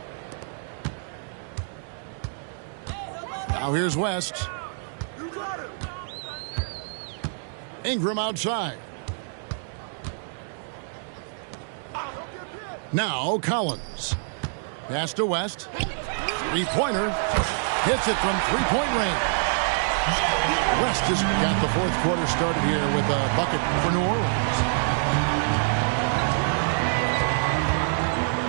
Now here's West. Ingram outside. Now Collins. Pass to West. Three-pointer. Hits it from three-point range. West has got the fourth quarter started here with a bucket for New Orleans.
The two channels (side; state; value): left; silent; digital silence